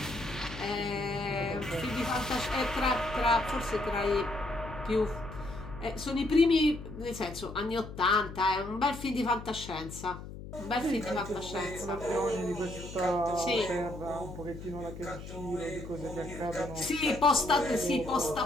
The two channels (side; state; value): left; noise; hum, 12 dB below the sound